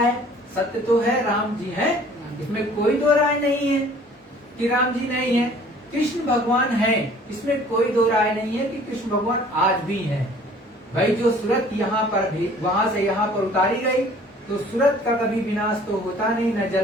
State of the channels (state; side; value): normal; both; correlation 0.52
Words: सत्य तो है, राम जी हैं, इसमें कोई दो राय नहीं है कि राम जी नहीं है। कृष्ण भगवान है, इसमें कोई दो राय नहीं है कि कृष्ण भगवान आज भी हैं। भाई जो सूरत यहाँ पर भी वहां से यहाँ पर उतारी गई, तो सूरत का कभी विनाश तो होता नहीं, न